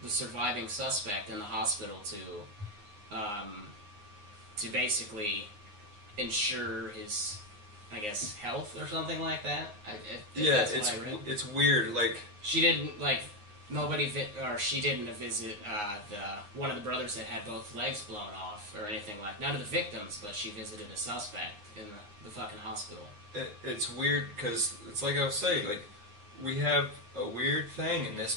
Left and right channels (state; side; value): late; left; 9.6 ms